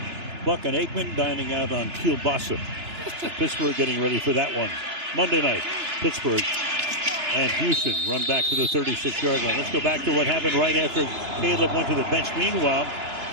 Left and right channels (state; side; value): late; left; 2.9 ms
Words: Buck and Aikman dining out on Kielbasa. Pittsburgh getting ready for that one. Monday night, Pittsburgh and Houston run back to the 36-yard line. Let's go back to what happened right after Caleb went to the bench. Meanwhile,